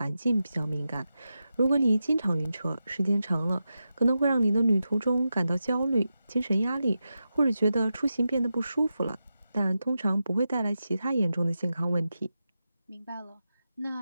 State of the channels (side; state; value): both; inverted; correlation -0.90